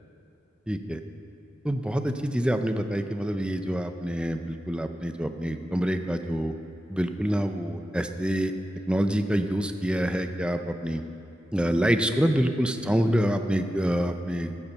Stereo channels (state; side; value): normal; both; correlation 0.92